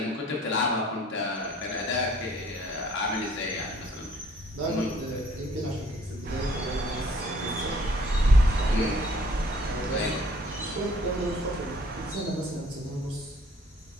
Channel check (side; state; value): both; normal; correlation 0.58